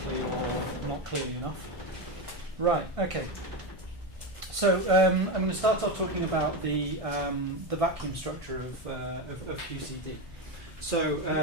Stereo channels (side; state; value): both; normal; correlation 0.14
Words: or not clearly enough. Right. Okay. So I'm going to start off talking about the vacuum structure of QCD. So